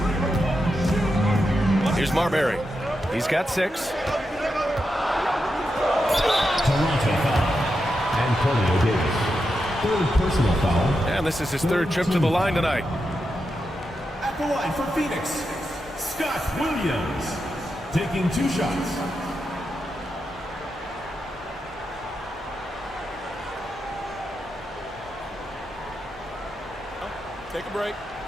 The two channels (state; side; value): normal; both; correlation 0.87